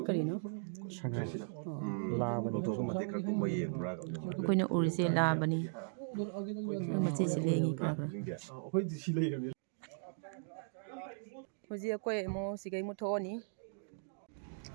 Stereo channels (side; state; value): left; silent; digital silence